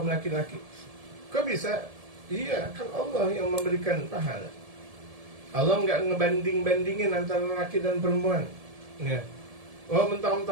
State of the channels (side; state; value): left; late; 1.7 ms